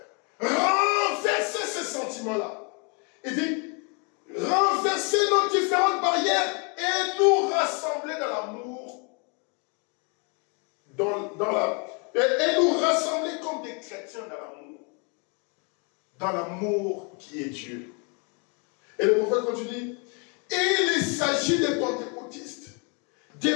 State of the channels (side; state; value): right; quieter; 34.3 dB